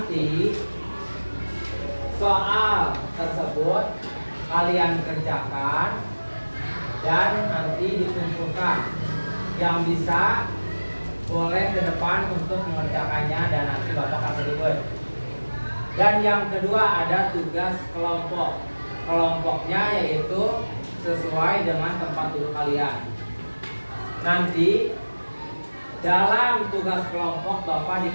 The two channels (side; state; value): both; inverted; correlation -1.00